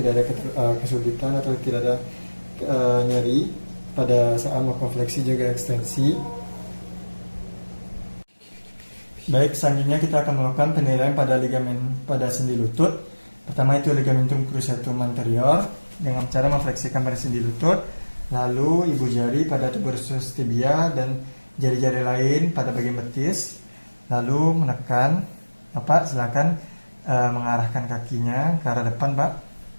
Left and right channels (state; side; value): inverted; both; correlation -1.00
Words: ada kesulitan atau tidak ada nyeri pada saat melakukan fleksi juga ekstensi. Baik, selanjutnya kita akan melakukan penilaian pada ligamen pada sendi lutut. Pertama itu ligamentum cruciatum anterior dengan cara memfleksikan pada sendi lutut, lalu ibu jari pada tuberous tibia dan jari-jari lain pada bagian betis, lalu menekan. Bapak silakan mengarahkan kakinya ke arah depan Pak.